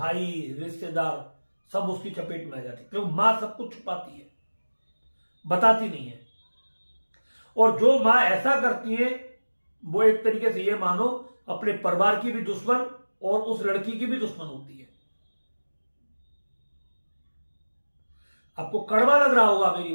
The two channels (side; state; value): both; inverted; correlation -1.00